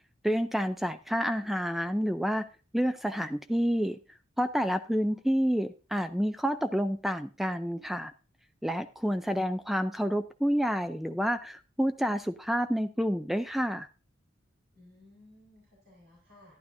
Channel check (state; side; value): normal; both; correlation 0.94